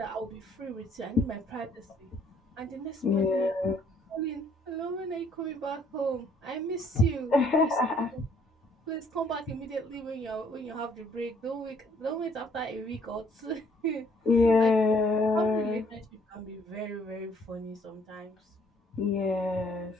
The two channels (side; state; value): both; normal; correlation 0.64